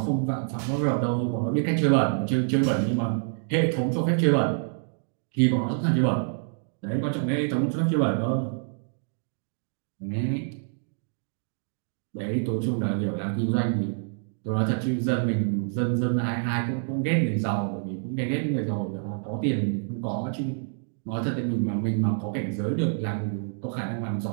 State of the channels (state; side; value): silent; left; digital silence